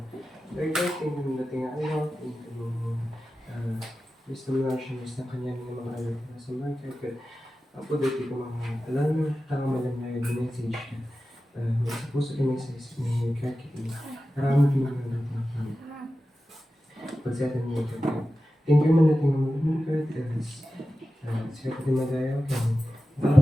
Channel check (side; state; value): both; normal; correlation 0.94